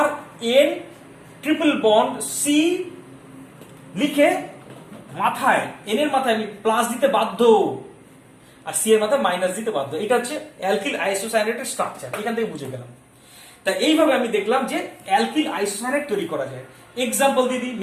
RN ট্রিপল বন্ড C লিখে মাথায়, N এর মাথায় আমি প্লাস দিতে বাধ্য, আর C এর মাথায় মাইনাস দিতে বাধ্য। এটা হচ্ছে অ্যালকিল আইসোসায়ানাইডের স্ট্রাকচার, এখান থেকে বুঝে গেলাম। তাই এইভাবে আমি দেখলাম যে অ্যালকিল আইসোসায়ানাইড তৈরি করা যায়। এক্সাম্পল দিদি,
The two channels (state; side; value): identical; both; correlation 1.00